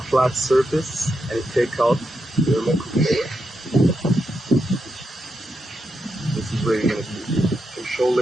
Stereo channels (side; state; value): both; normal; correlation 0.85